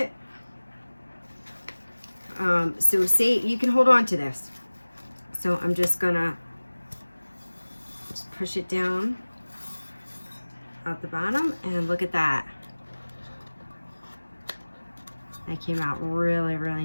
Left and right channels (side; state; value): both; inverted; correlation -1.00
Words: So say you can hold on to this. So I'm just gonna push it down out the bottom, and look at that. That came out really, really